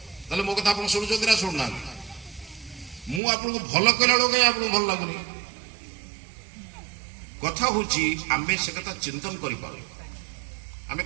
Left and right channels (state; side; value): drops out; left; at 3.2 s